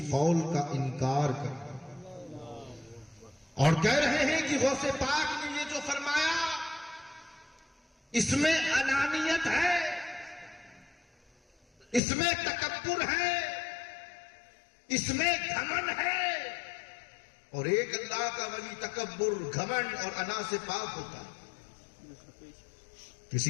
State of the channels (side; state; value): right; drops out; at 12.0 s